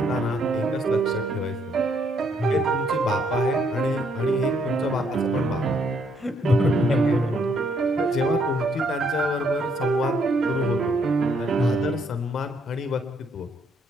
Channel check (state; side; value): normal; both; correlation 0.70